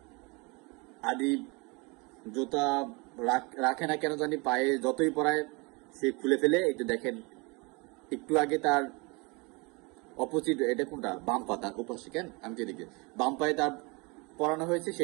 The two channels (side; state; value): left; quieter; 28.4 dB